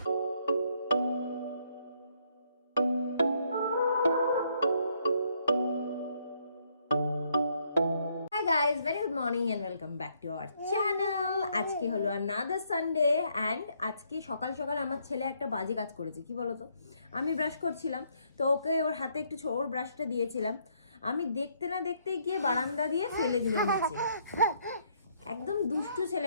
guys, very good morning and welcome back to our channel. আজকে হলো another Sunday and আজকে সকাল সকাল আমার ছেলে একটা বাজে কাজ করেছে। কি বলতো, আমি ব্রাশ করছিলাম তো ওকে ওর হাতে একটু ওর ব্রাশটা দিয়েছিলাম, আমি দেখতে না দেখতে গিয়ে বারান্দা দিয়ে ফেলে দিল নিচে। একদম দুষ্টু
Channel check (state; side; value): inverted; both; correlation -0.71